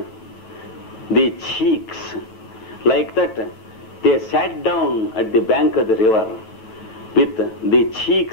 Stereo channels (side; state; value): right; late; 9.4 ms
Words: the cheeks. Like that, they sat down at the bank of the river with the